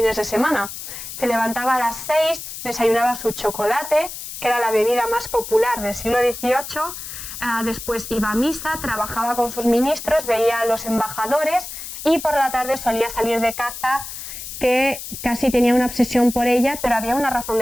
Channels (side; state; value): left; noise; hiss, 10 dB below the sound